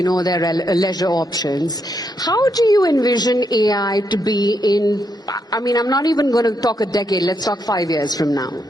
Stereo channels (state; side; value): normal; both; correlation 0.79